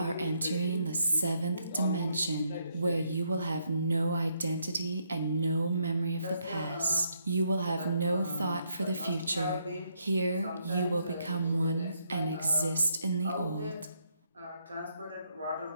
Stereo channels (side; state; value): both; inverted; correlation -0.75